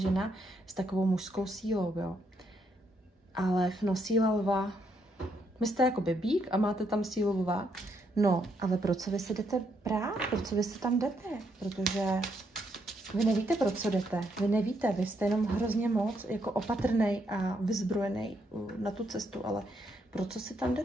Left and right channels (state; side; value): normal; both; correlation 0.75